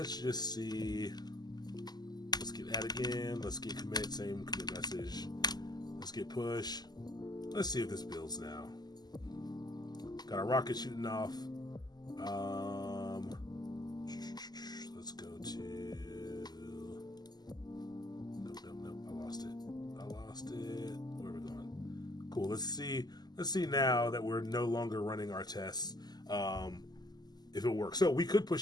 just see. Let's get add again. Let's get commit, same commit message. Let's get push. Let's see if this builds now. Got a rocket shooting off. Let's go to... Nope. I lost it. Where are we going? Cool. Let's see now that we're no longer running our tests. If it works. So we could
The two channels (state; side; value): late; right; 0.20 ms